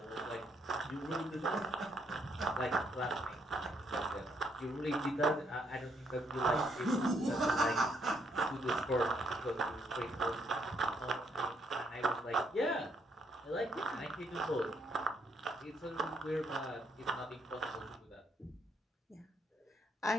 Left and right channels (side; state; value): both; normal; correlation 0.72